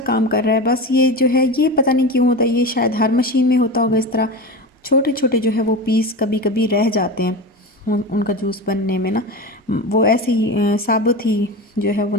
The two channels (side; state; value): both; normal; correlation 0.25